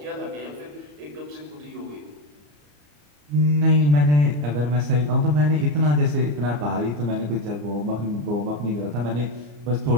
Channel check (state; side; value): late; left; 34 ms